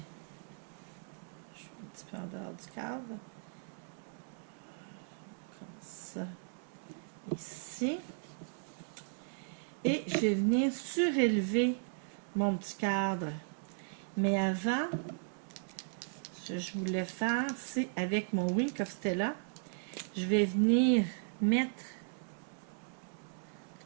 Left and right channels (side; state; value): left; silent; digital silence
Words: Je suis un petit peu en dehors du cadre. Comme ça. Ici. Et je vais venir surélever mon petit cadre. Mais avant, ce que je voulais faire, c'est avec mon Wink of Stella, je vais venir mettre